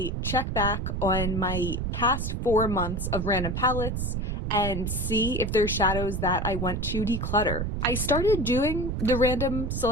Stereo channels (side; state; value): right; noise; rumble, 2 dB below the sound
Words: check back on my past 4 months of random palettes and see if there's shadows that I want to declutter. I started doing the random